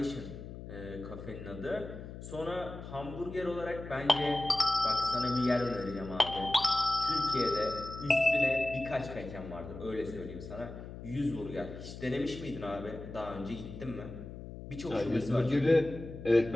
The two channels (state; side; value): noise; left; hum, 11 dB below the sound